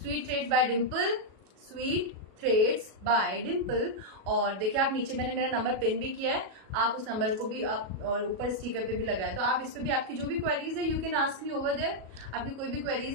threads by Dimple, sweet threads by Dimple. और देखिए आप नीचे मैंने मेरा नंबर पिन भी किया है, आप उस नंबर को भी आप, और ऊपर स्पीकर पे भी लगाया, तो आप इस पे भी आपकी जो भी क्वेरीज है you can ask me over there, आपकी कोई भी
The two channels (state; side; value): late; left; 37 ms